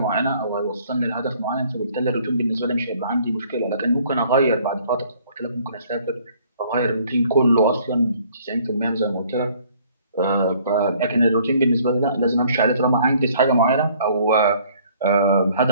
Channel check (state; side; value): inverted; both; correlation -0.59